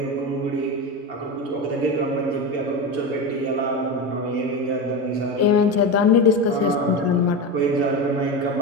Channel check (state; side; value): normal; both; correlation 0.20